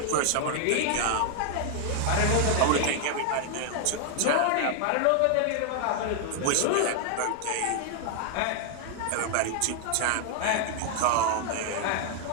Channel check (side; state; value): both; different; correlation 0.00